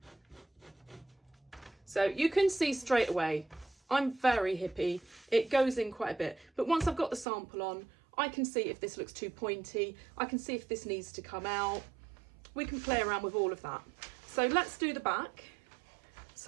So you can see straight away, I'm very hippie. It goes in quite a bit. But once I've got the sample on, I can see if this looks too pointy. I can see if this needs to come out. We can play around with all of that. So let's do the back.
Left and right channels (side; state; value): left; drops out; at 7.2 s